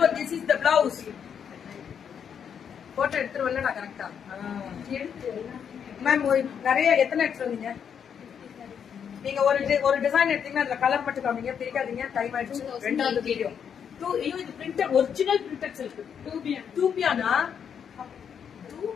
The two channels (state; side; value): quieter; right; 7.7 dB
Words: this is the blouse. Photo எடுத்துருவல நான் கரெக்டா மேம். நிறைய எத்தனை எடுத்து வந்தீங்க நீங்க? ஒரு டிசைன் எடுத்தீங்கன்னா அதுல கலர் மட்டும் காமிங்க, பிரிக்காதீங்க. டைம் ஆயிடுச்சு. ரெண்டாவது வீடியோ. இது பிரிண்டட், ஒரிஜினல் பிரிண்டட் சில்க். டூபியானா?